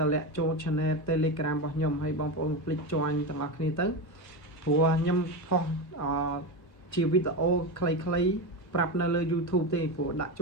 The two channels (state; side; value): late; right; 1.6 ms